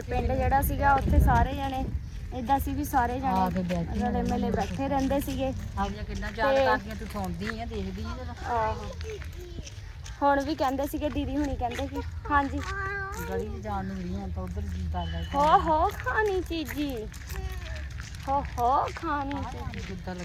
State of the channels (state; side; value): identical; both; correlation 1.00